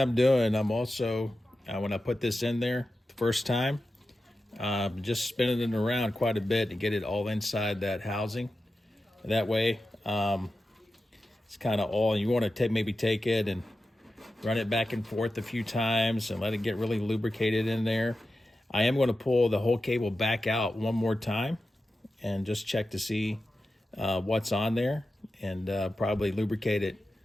doing, I'm also, when I put this in there the first time, just spinning it around quite a bit to get it all inside that housing. That way, it's kind of all, you want to maybe take it and run it back and forth a few times and let it get really lubricated in there. I am going to pull the whole cable back out one more time and just check to see what's on there, and probably lubricate it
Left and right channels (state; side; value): normal; both; correlation 0.92